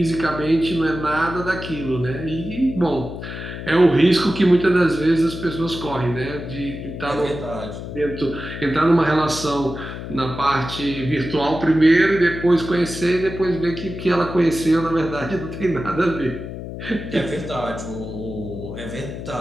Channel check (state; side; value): noise; left; hum, 9 dB below the sound